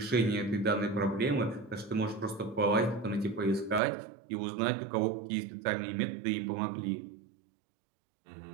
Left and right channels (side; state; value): left; drops out; at 3.8 s